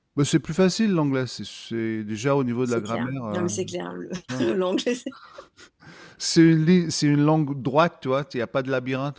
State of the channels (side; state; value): both; identical; correlation 1.00